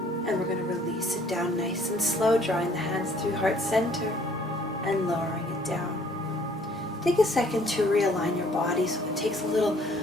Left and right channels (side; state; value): both; normal; correlation 0.59